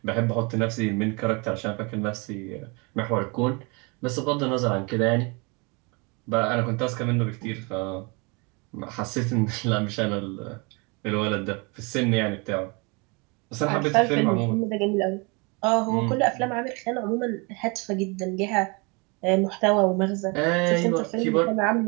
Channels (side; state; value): left; quieter; 29.9 dB